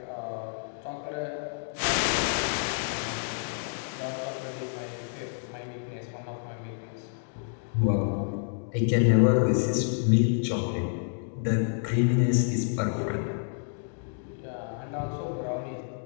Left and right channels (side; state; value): right; silent; digital silence